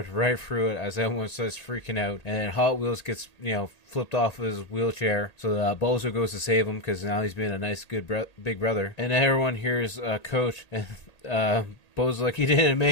right through it as everyone starts freaking out. And then Hot Wheels gets, flipped off of his wheelchair, so Bozo goes to save him because now he's being a nice, good big brother. And everyone hears Coach, and Bozo's like, he didn't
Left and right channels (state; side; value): late; right; 1.8 ms